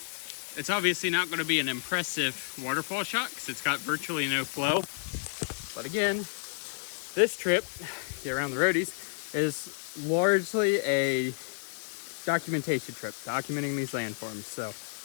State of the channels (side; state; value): right; silent; digital silence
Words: It's obviously not going to be an impressive waterfall shot because it's got virtually no flow. But again, this trip, get around the roadies, is largely a documentation trip, documenting these landforms. So